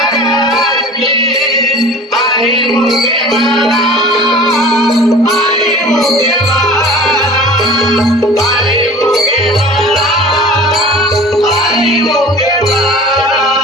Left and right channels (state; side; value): normal; both; correlation 0.41